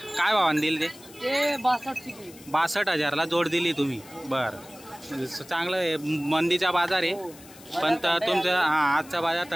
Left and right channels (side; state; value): left; noise; hiss, 21 dB below the sound